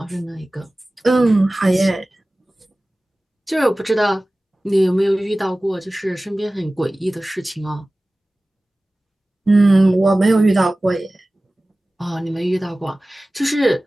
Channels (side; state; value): both; normal; correlation 0.97